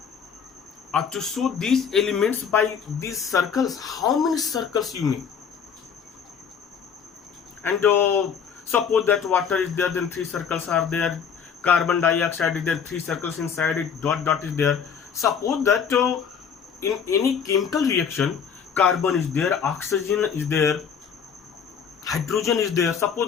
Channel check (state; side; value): quieter; right; 7.0 dB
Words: to show these elements by these circles? How many circles you make? And suppose that water is there, then three circles are there. Carbon dioxide is there, three circles inside it, dot dot is there. Suppose that in any chemical reaction, carbon is there, oxygen is there, hydrogen is there.